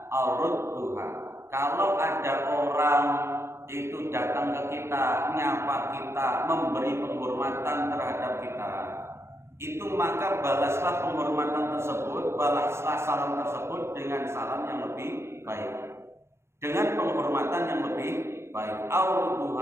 aw rudduha. Kalau ada orang itu datang ke kita, nyapa kita, memberi penghormatan terhadap kita, itu maka balaslah penghormatan tersebut, balaslah salam tersebut dengan salam yang lebih baik, dengan penghormatan yang lebih baik,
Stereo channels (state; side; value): late; left; 0.13 ms